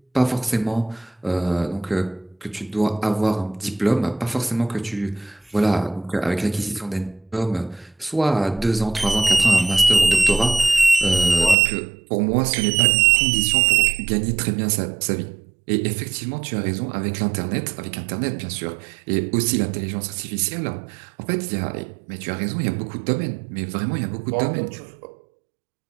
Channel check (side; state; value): left; drops out; at 11.6 s